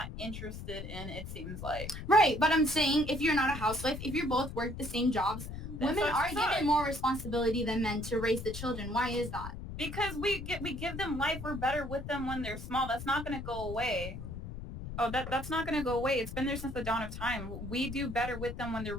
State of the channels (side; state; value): left; noise; rumble, 8 dB below the sound